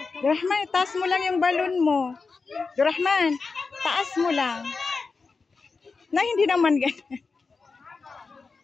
Rahman, taas mo lang yung balon mo. Rahman, taas mo lang. Na hindi naman ganyan.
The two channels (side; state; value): right; quieter; 4.5 dB